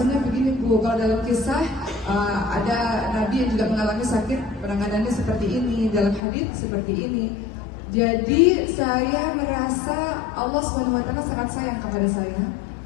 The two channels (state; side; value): drops out; right; at 6.2 s